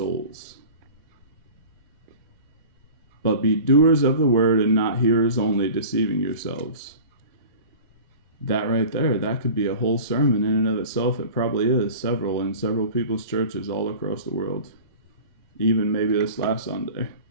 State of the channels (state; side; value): inverted; both; correlation -0.38